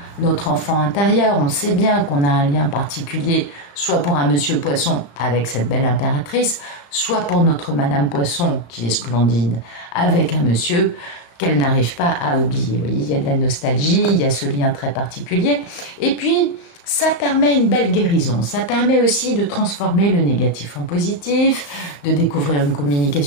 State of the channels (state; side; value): late; right; 35 ms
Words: notre enfant intérieur. On sait bien qu'on a un lien particulier, soit pour un monsieur poisson avec cette belle impératrice, soit pour notre madame poisson qui est splendide avec un monsieur qu'elle n'arrive pas à oublier. Vous voyez, il y a de la nostalgie, il y a ce lien très particulier. Et puis, ça permet une belle guérison. Ça permet aussi de transformer le négatif en positif, de découvrir une